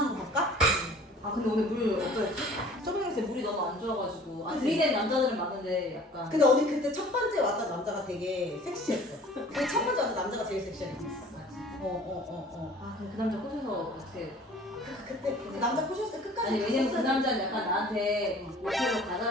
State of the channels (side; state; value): both; normal; correlation 0.49